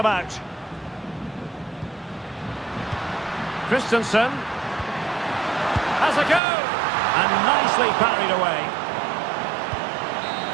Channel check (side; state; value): left; drops out; at 6.4 s